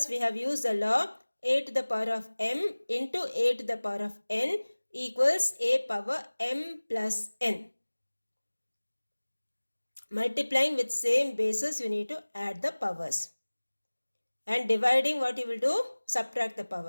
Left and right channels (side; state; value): both; inverted; correlation -1.00